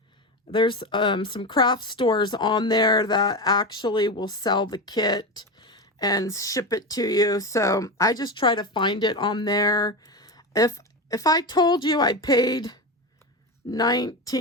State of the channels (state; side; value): normal; both; correlation 0.19